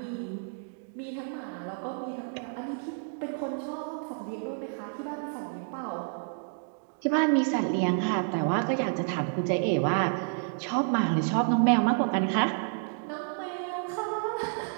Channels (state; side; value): silent; left; 58 dB below the other